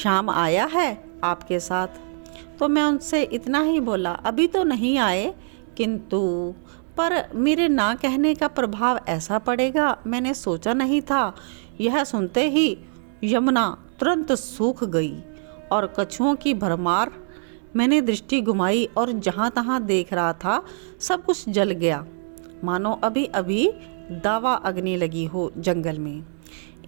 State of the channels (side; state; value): left; silent; 63 dB below the other